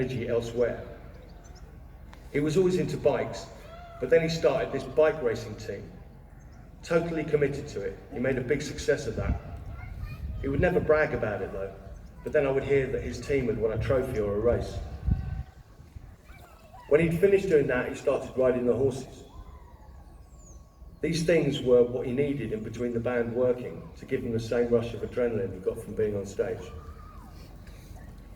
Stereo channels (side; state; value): both; identical; correlation 1.00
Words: elsewhere. He was always into bikes, but then he started this bike racing team. Totally committed to it. He made a big success of that. He would never brag about it though, but then I would hear that his team had won a trophy or a race. When he'd finished doing that, he started riding the horses. These things were what he needed in between the band working to give him the same rush of adrenaline he got from being on stage.